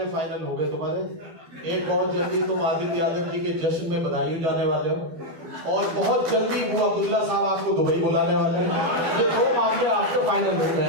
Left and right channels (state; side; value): late; left; 12 ms